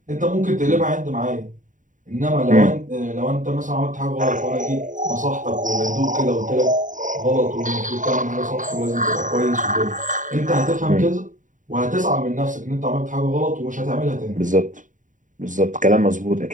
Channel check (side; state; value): left; late; 0.37 ms